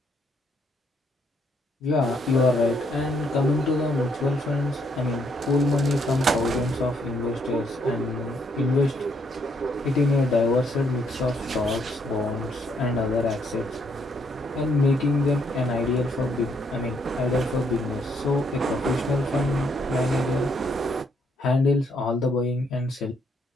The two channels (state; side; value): normal; both; correlation 0.72